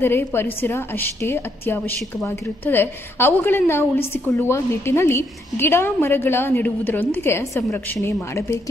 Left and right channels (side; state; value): both; normal; correlation 0.74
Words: ಪರಿಸರ ಅಷ್ಟೇ ಅತ್ಯವಶ್ಯಕವಾಗಿರುತ್ತದೆ. ಅವುಗಳನ್ನು ಉಳಿಸಿಕೊಳ್ಳುವ ನಿಟ್ಟಿನಲ್ಲಿ ಗಿಡ ಮರಗಳ ನೆಡುವುದರೊಂದಿಗೆ ಸಂರಕ್ಷಣೆ